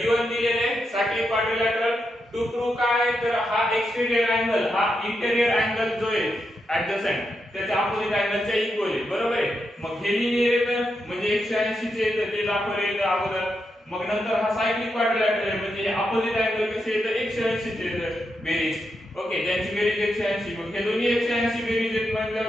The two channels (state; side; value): normal; both; correlation 0.84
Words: दिलेले सायक्लिक क्वाड्रिलॅटरल टू प्रूव्ह काय तर हा एक्सटेरियर अँगल हा इंटेरियर अँगल जो आहे ऍडजसंट त्याच्या अपोजिट अँगलच्या इक्वल आहे बरोबर आहे मग हे लिहिले तर म्हणजे 180 चे तर ते दाखवले अगोदर मग नंतर हा सायक्लिक क्वाड्रिलॅटरल आहे म्हणजे हे अपोजिट अँगल कसे येतं 180 चे बेरीज ओके ज्यांची बेरीज 180 मग हे दोन्ही 180 बेरीज आहेत